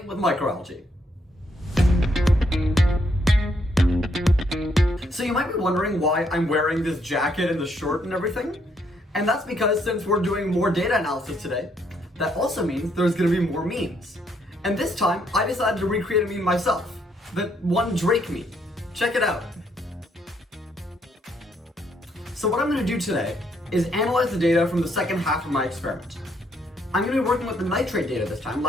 with microalgae. So you might be wondering why I'm wearing this jacket and the shirt and everything, and that's because since we're doing more data analysis today, that also means there's going to be more memes. And this time, I decided to recreate a meme myself, the one Drake meme. Check it out. So what I'm going to do today is analyze the data from the second half of my experiment. I'm going to be working with the nitrate data this time.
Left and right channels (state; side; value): normal; both; correlation 0.72